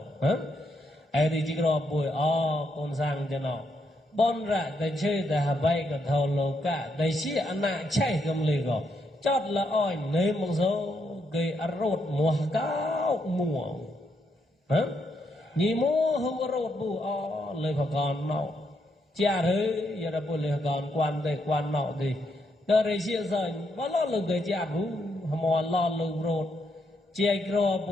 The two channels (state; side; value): normal; both; correlation 0.78